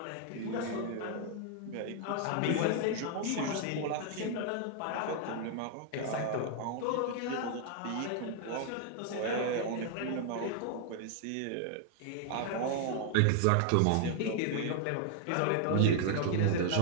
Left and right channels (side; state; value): both; different; correlation 0.00